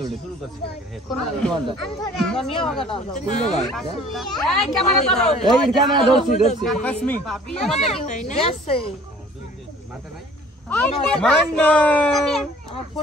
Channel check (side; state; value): both; normal; correlation 0.51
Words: এই ক্যামেরা ধরছি আমার